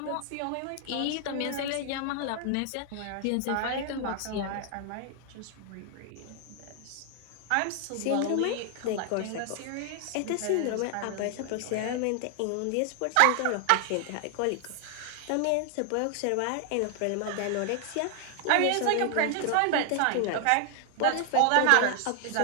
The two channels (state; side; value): different; both; correlation 0.00